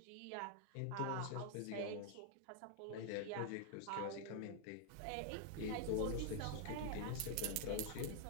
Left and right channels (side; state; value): both; different; correlation 0.00